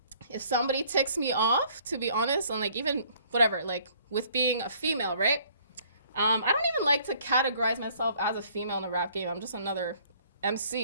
If somebody ticks me off, to be honest, and like even whatever, like with being a female, right? I don't even like to categorize myself as a female in a rap game. I'm just another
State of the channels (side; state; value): both; inverted; correlation -0.59